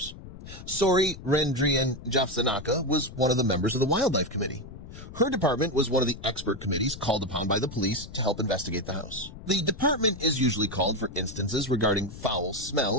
Sori Rendrian Jafsanaka was one of the members of the wildlife committee. Her department was one of the expert committees called upon by the police to help investigate the house. The department is usually called for instances regarding foul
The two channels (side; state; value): left; noise; rumble, 14 dB below the sound